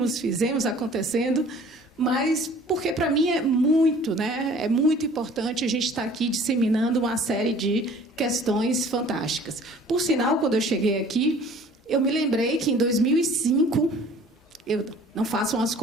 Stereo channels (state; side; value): normal; both; correlation 0.50